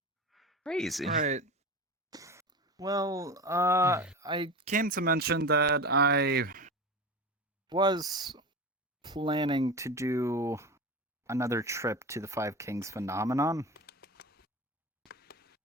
crazy. Right. Well, I came to mention that I was planning to do another trip to the Five Kings phenomenon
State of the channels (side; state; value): both; normal; correlation 0.27